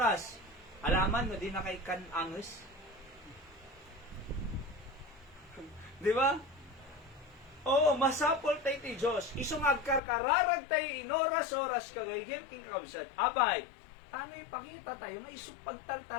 Alaman no, di na kay kananges. Di ba? Oo, masapol tayo ti Diyos. Isungag karkararag tayo inoras-oras kagayem king kabsat. Abay, ano ipakita tayo nga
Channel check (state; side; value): drops out; right; at 10.0 s